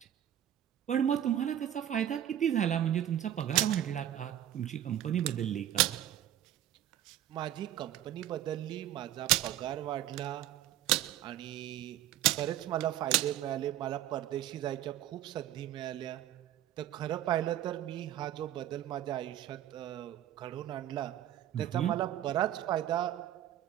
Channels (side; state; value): left; quieter; 11.9 dB